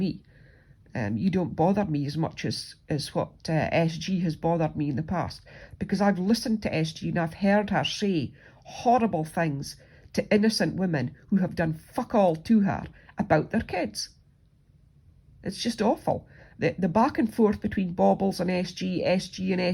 You don't bother me as much as what SG has bothered me in the past, because I've listened to SG and I've heard her say horrible things to innocent women who have done fuck all to her about their kids. It's just awful. The back and forth between Bobbles and SG and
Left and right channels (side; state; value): both; identical; correlation 1.00